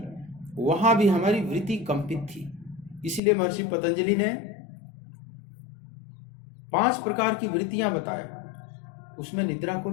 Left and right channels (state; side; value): drops out; right; at 3.2 s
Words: वहां भी हमारी वृत्ति कंपित थी। इसलिए महर्षि पतंजलि ने 5 प्रकार की वृत्तियां बताया, उसमें निद्रा को